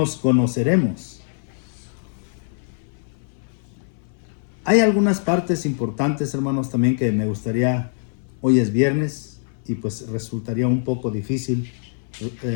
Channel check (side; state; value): right; silent; 60 dB below the other